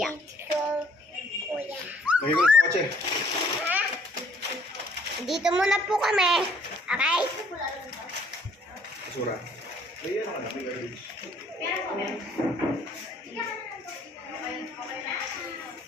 Kuya. Lagay ko na sa kotse. Ha? Dito muna po kami. Okay? Basura. Ay, ano ka na? May garbage.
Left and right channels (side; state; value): both; normal; correlation 0.61